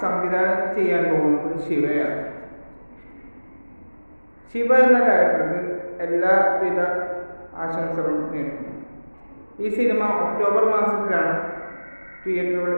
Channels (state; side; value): inverted; both; correlation -1.00